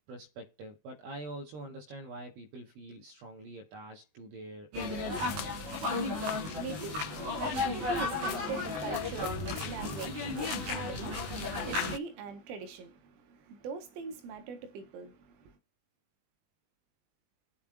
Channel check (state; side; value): late; left; 20 ms